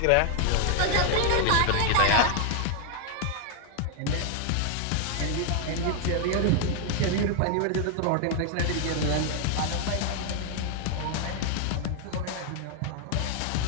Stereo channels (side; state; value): both; different; correlation 0.00